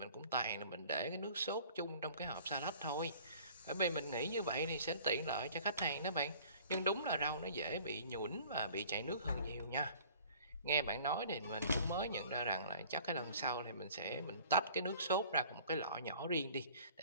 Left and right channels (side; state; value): both; inverted; correlation -0.50